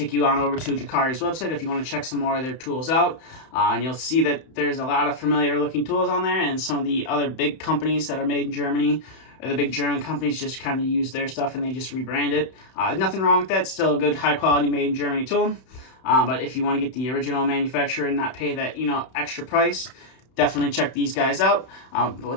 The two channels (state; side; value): late; right; 31 ms